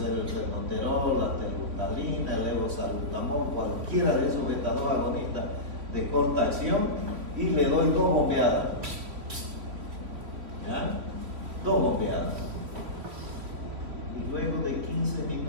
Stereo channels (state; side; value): late; left; 3.6 ms